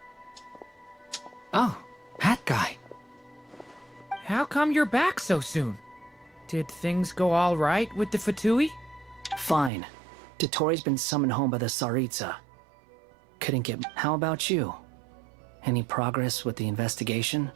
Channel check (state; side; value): drops out; left; at 9.7 s